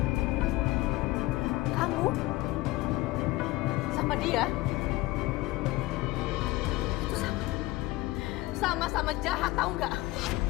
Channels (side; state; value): right; quieter; 19.4 dB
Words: Kamu sama dia itu sama-sama jahat, tahu nggak?